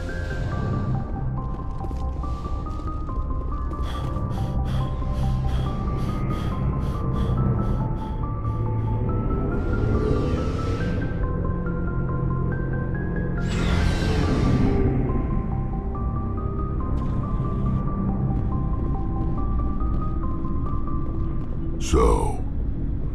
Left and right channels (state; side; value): identical; both; correlation 1.00